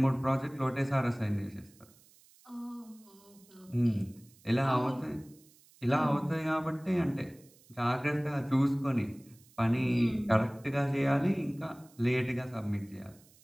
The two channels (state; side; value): noise; right; hiss, 28 dB below the sound